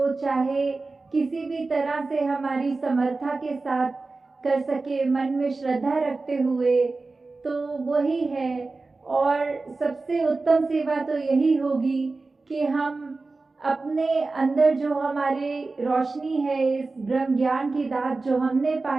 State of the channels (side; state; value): left; quieter; 3.6 dB